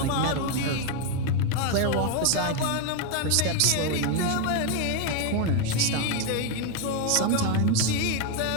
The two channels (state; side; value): different; both; correlation 0.01